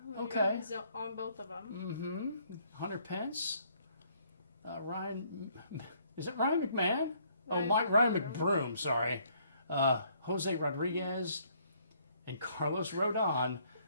Okay. He's on both of them. Mm-hmm. Hunter Pence. Ryan. Is it Ryan McMahon? Ryan McBroom, sorry. Jose Rodriguez and Carlos Rodon,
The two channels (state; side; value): inverted; both; correlation -0.65